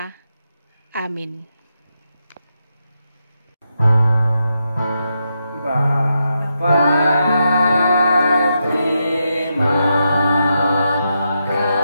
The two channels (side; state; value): both; inverted; correlation -0.84